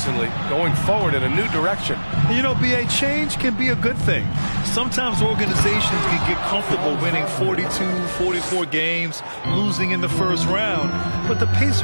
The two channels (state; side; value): inverted; both; correlation -1.00